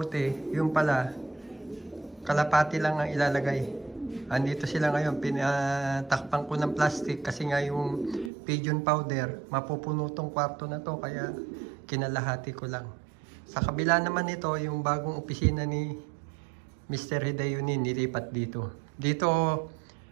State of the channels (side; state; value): left; drops out; at 8.3 s